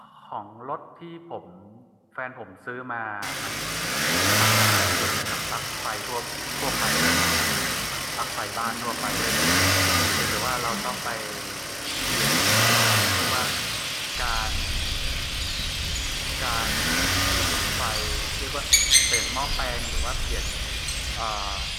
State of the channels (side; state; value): both; identical; correlation 1.00